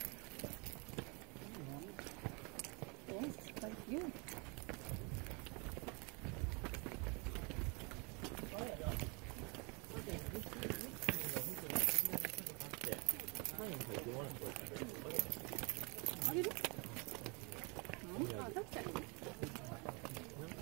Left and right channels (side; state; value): left; quieter; 32.1 dB